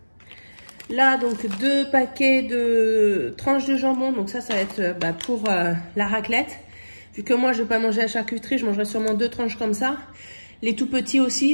Là, donc, 2 paquets de tranches de jambon. Donc ça va être pour la raclette. Vu que moi, je ne vais pas manger la charcuterie, je mangerai sûrement 2 tranches comme ça. Les tout petits aussi,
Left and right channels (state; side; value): inverted; both; correlation -1.00